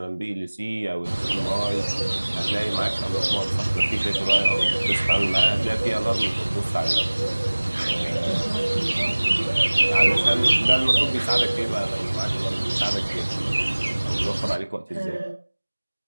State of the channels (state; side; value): inverted; both; correlation -1.00